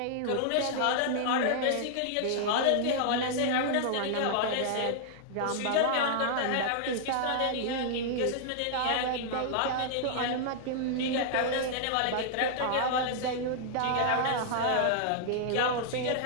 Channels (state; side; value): different; both; correlation -0.01